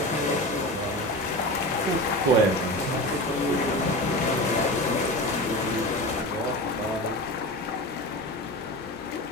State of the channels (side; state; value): both; normal; correlation 0.28